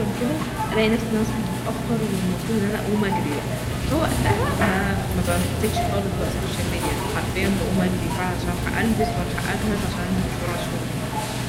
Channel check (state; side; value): identical; both; correlation 1.00